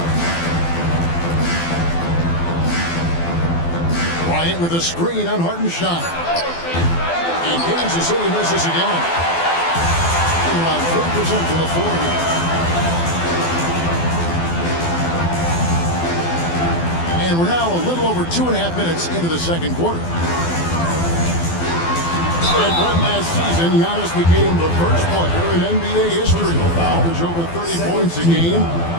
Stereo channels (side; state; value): right; late; 12 ms